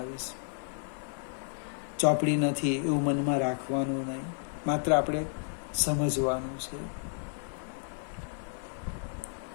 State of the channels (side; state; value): right; silent; 56 dB below the other